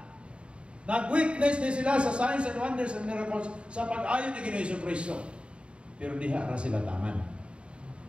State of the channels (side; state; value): left; late; 0.056 ms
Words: Nag-witness din sila sa signs and wonders and miracles sa pag-ayon ni Ginoong Kristo. Pero diha ra sila taman.